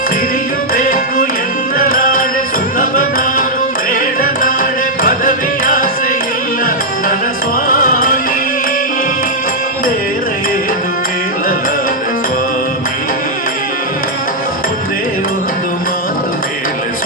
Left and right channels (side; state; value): both; normal; correlation -0.03